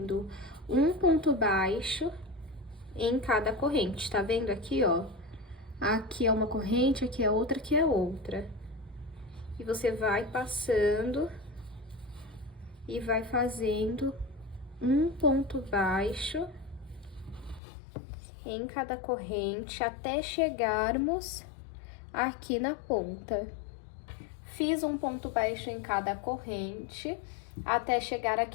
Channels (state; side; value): drops out; right; at 17.6 s